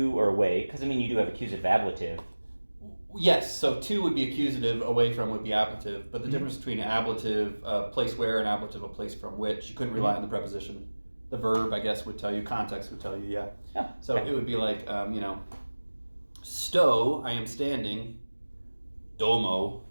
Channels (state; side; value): inverted; both; correlation -1.00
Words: or away, because you do have accusative ablative. Yes, so to would be accusative, away from would be ablative, but the difference between ablative, place where, and ablative, a place from which, you couldn't rely on the preposition. The verb, I guess, would tell you, context would tell you, yeah. So okay. It would be like, sto, I am standing, domo,